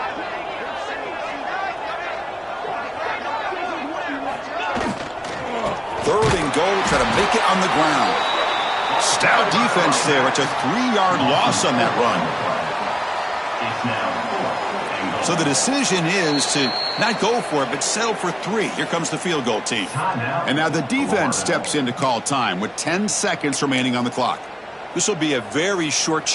Third and goal, try to make it on the ground. Stout defense there. It's a 3-yard loss on that run. So the decision is to not go for it, but settle for 3. Here comes the field goal team. And now the defense steps in to call time with 10 seconds remaining on the clock. This will be a very short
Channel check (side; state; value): both; identical; correlation 1.00